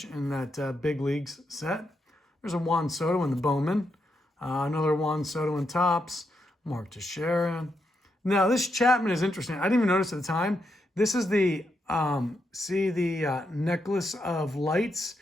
in that big leagues set. There's a Juan Soto in the Bowman. Another Juan Soto in Topps. Mark Teixeira. Now this Chapman is interesting. I didn't even notice at the time. This is the, necklace of lights.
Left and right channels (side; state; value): both; normal; correlation 0.82